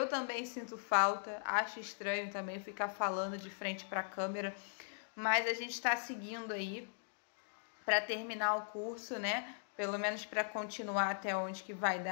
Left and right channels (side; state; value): right; silent; digital silence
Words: também sinto falta, acho estranho também ficar falando de frente para a câmera, mas a gente está seguindo aí para terminar o curso, né? Pelo menos para continuar até onde que vai